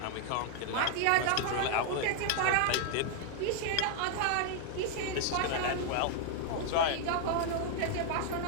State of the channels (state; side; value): different; both; correlation 0.00